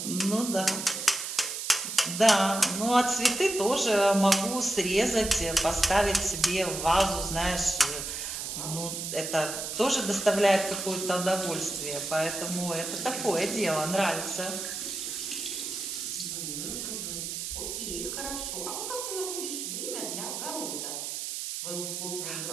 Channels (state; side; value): noise; right; hiss, 5 dB below the sound